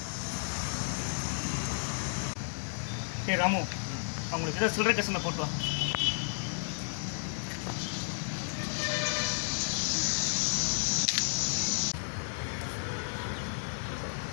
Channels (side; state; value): right; silent; digital silence